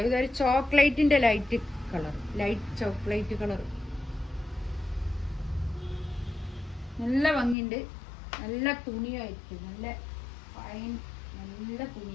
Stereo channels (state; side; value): drops out; right; at 7.6 s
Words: ഇതൊരു ചോക്ലേറ്റിൻ്റെ light colour, light chocolate colour. നല്ല ഭംഗിയുണ്ട്, നല്ല തുണിയായിരിക്കും, നല്ല ഫൈൻ, നല്ല